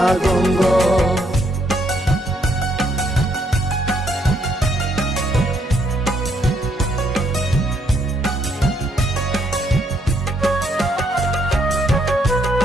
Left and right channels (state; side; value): normal; both; correlation 0.72